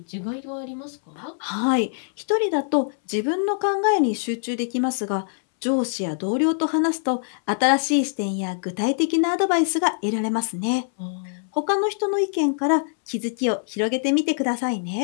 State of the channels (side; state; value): right; silent; 63 dB below the other